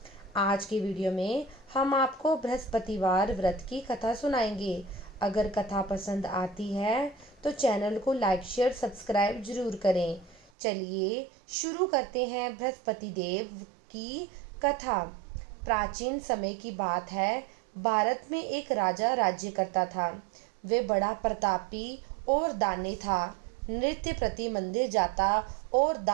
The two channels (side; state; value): left; drops out; at 10.5 s